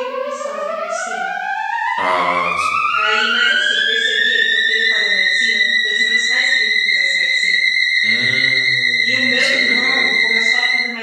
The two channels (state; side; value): identical; both; correlation 1.00